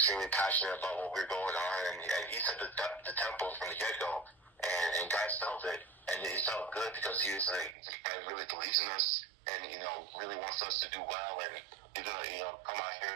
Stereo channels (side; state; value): left; drops out; at 7.8 s